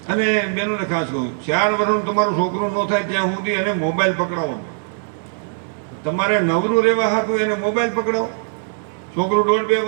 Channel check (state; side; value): silent; left; digital silence